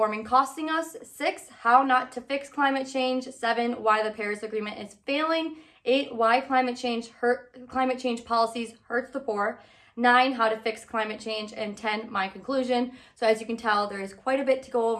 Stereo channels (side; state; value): both; identical; correlation 1.00